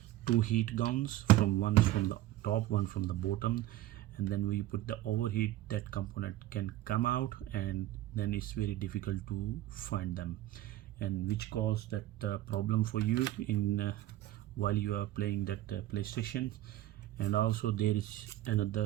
two heat guns, from one from the top, one from the bottom, and then we put the overheat, that component can come out, and then it's very difficult to find them, and which cause that problem for you in while you are playing that PlayStation. And also there is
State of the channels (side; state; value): left; quieter; 14.7 dB